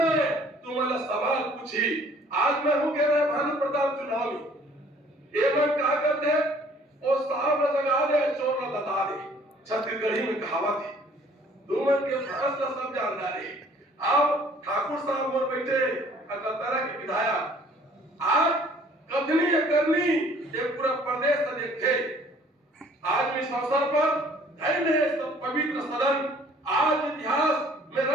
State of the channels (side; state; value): both; normal; correlation 0.56